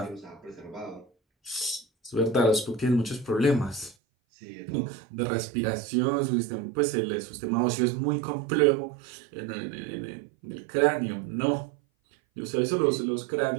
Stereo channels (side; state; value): left; drops out; at 4.0 s